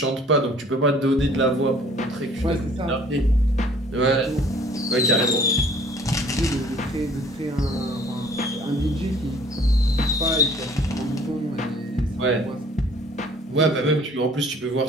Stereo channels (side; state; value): both; normal; correlation 0.54